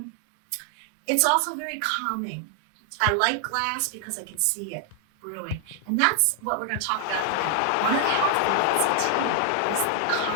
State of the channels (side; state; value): both; different; correlation 0.00